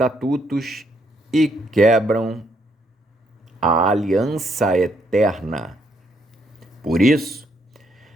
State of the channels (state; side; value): normal; both; correlation 0.74